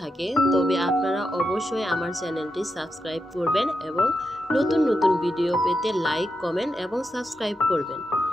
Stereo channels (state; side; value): normal; both; correlation 0.86